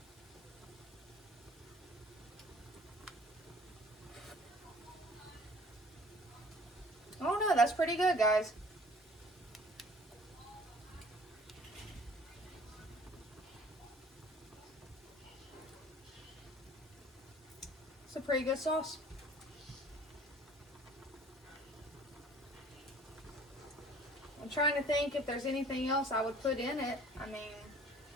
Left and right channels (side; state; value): both; normal; correlation 0.51